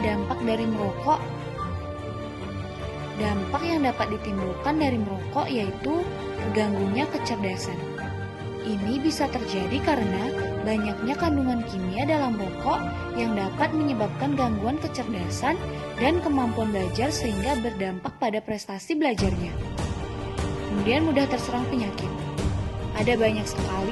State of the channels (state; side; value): identical; both; correlation 1.00